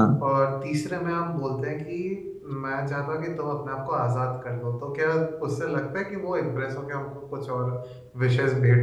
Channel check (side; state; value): both; identical; correlation 1.00